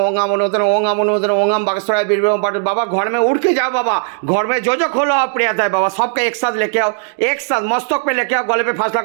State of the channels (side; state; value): left; silent; digital silence